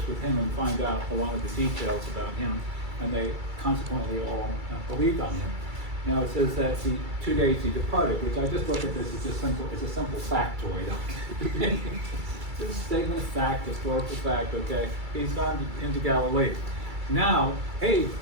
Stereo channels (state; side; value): late; left; 2.3 ms